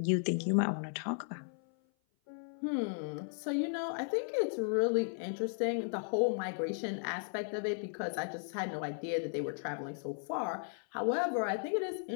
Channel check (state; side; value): silent; right; 54 dB below the other